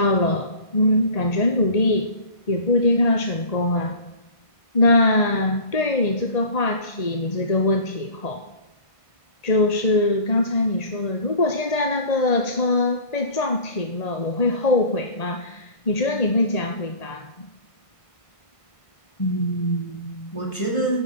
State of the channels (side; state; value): right; late; 1.5 ms